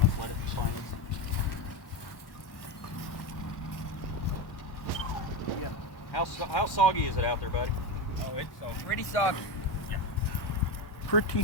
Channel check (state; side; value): late; right; 1.1 ms